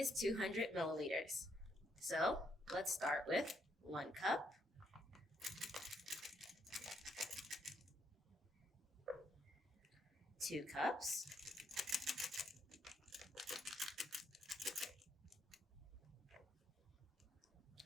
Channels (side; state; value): both; normal; correlation 0.75